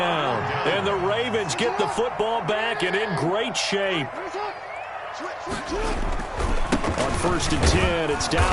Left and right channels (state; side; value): identical; both; correlation 1.00